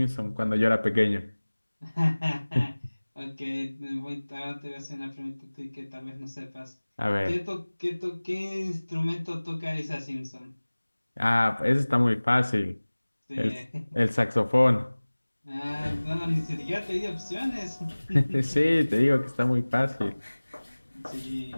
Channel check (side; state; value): both; inverted; correlation -1.00